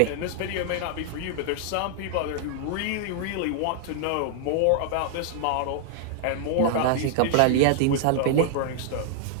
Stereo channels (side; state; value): both; different; correlation -0.01